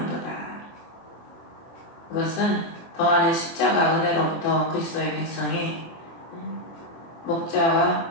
그것은 더하는 십자가 은혜로부터 그리스도의 백성이 목자와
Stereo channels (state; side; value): late; right; 24 ms